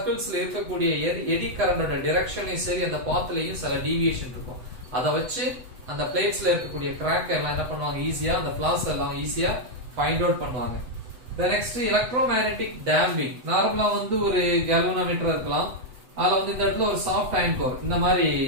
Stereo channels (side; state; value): left; late; 8.0 ms